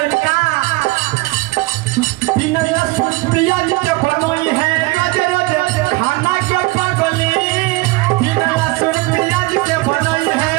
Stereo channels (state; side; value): quieter; left; 22.7 dB